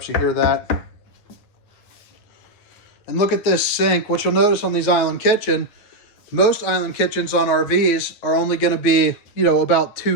You hear that. And look at this sink. What you'll notice on these island kitchen, most island kitchens on RVs are only going to be, about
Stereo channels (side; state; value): right; late; 9.4 ms